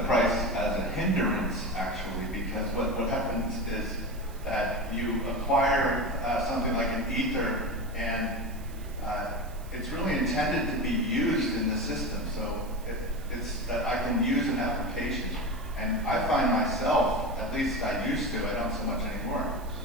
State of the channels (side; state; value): right; noise; hiss, 22 dB below the sound